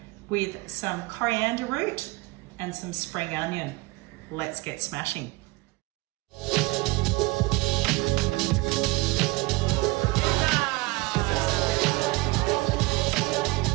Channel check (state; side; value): quieter; left; 23.8 dB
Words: with some coriander root and some spring onion. Let's get smashing.